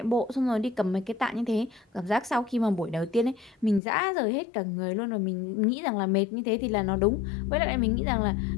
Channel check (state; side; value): drops out; right; at 3.8 s